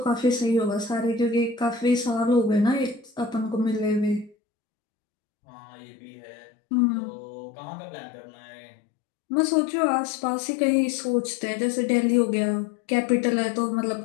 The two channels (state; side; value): drops out; right; at 4.4 s